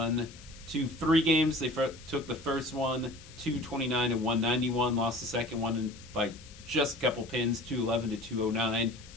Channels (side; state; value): left; noise; hiss, 20 dB below the sound